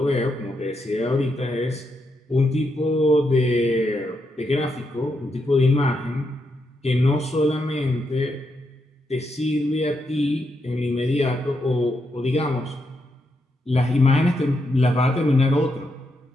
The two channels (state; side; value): normal; both; correlation 0.81